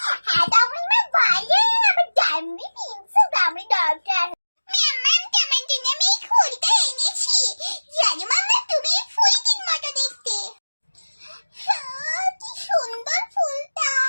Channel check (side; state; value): both; inverted; correlation -1.00